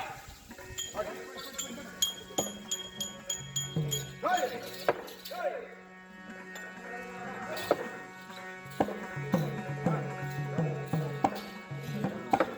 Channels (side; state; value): both; identical; correlation 1.00